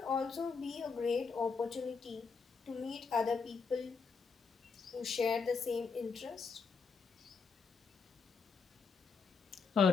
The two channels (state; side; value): quieter; right; 5.1 dB